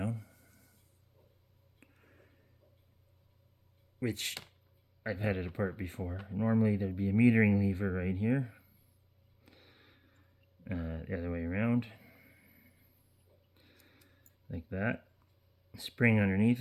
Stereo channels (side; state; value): both; identical; correlation 1.00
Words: which I've had it apart before. Normally there'd be a metering lever right here, the other way around, like that. Spring underneath